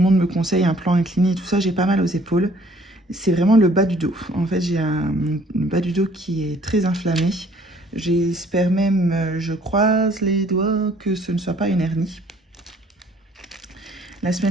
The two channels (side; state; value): both; normal; correlation 0.58